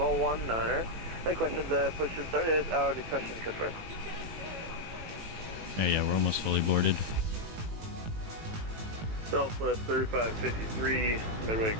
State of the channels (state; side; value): late; left; 18 ms